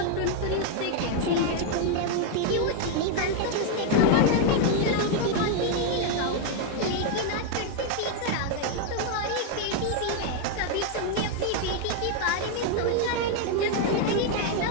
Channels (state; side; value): different; both; correlation 0.00